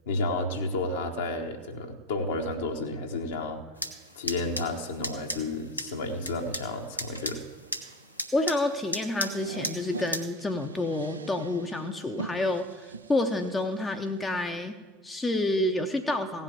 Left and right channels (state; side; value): normal; both; correlation 0.30